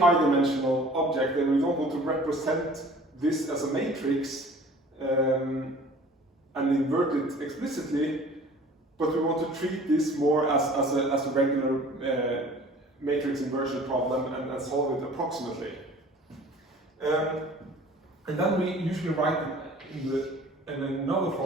object, and we don't want to represent this as a matrix and invert it explicitly, but we want to treat this more as a regular matrix inversion problem and solve it approximately. And then we usually write in another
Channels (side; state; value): both; normal; correlation 0.48